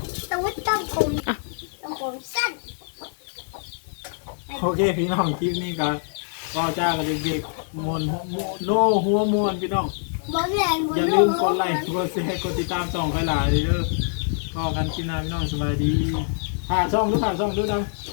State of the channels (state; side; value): silent; right; 58 dB below the other